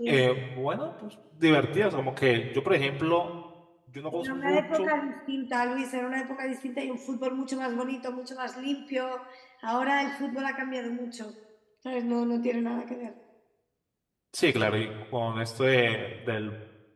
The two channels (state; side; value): identical; both; correlation 1.00